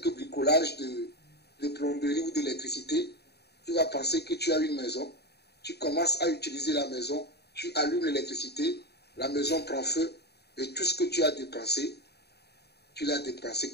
bricolages de plomberie ou d'électricité. Tu vas penser que tu as une maison. Tu commences à utiliser la maison, tu allumes l'électricité, la maison prend feu et tout ce que tu as dépensé, tu l'as dépensé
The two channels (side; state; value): right; late; 0.48 ms